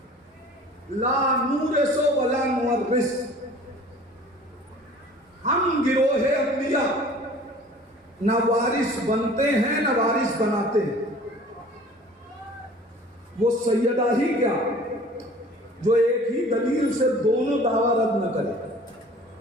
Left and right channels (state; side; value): normal; both; correlation 0.47